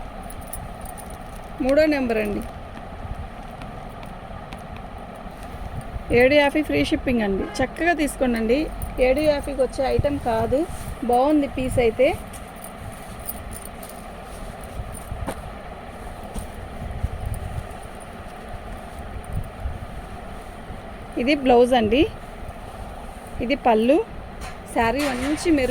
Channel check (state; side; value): identical; both; correlation 1.00